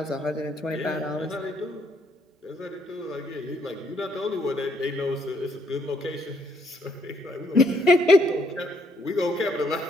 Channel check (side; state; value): both; normal; correlation 0.70